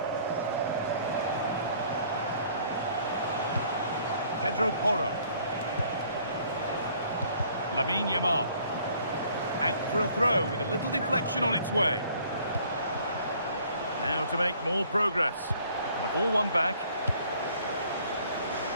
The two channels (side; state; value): both; inverted; correlation -0.59